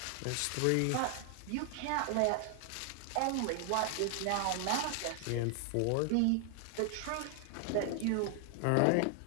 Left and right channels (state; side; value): different; both; correlation 0.00